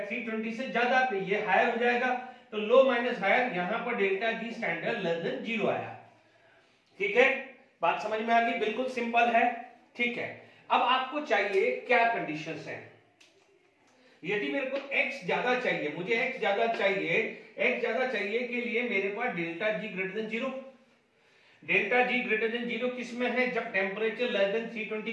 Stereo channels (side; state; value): both; identical; correlation 1.00